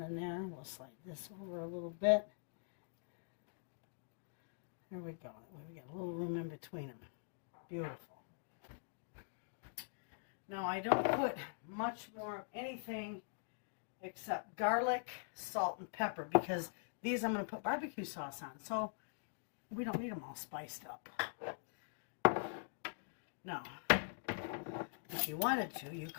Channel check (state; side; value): silent; right; digital silence